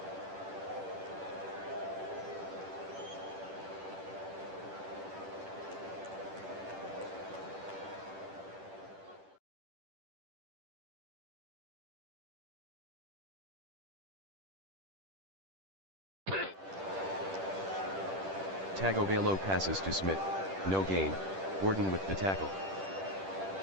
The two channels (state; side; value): late; left; 10 ms